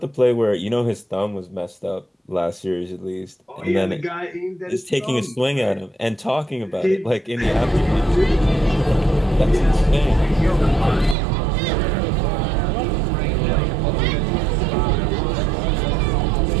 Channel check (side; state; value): left; drops out; at 11.2 s